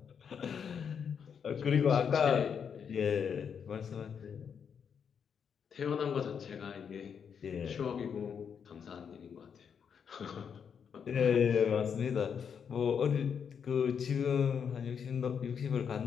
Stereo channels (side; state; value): right; quieter; 7.1 dB